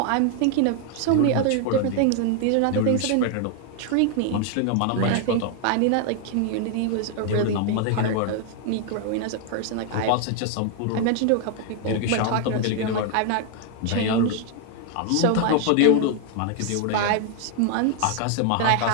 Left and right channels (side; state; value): both; different; correlation 0.00